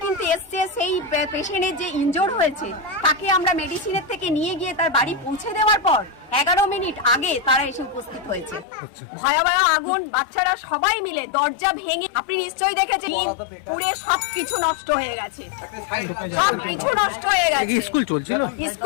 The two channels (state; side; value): drops out; right; at 8.7 s